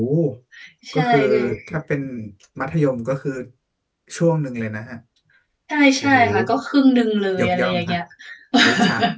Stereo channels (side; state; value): both; identical; correlation 1.00